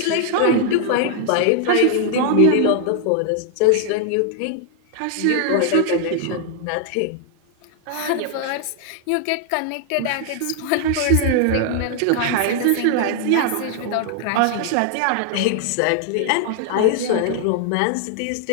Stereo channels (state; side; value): different; both; correlation 0.00